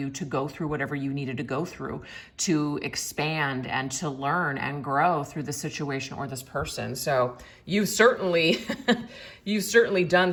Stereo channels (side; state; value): both; identical; correlation 1.00